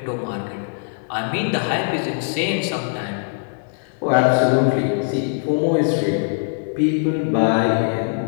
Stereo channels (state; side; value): silent; right; 65 dB below the other